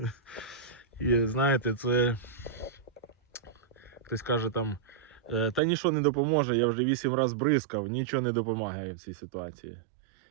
І знаєте, це хтось каже там, та нічого не допоможе, я вже 8 разів бризкав, нічого не допомагає в цій ситуації.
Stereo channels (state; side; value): drops out; left; at 5.6 s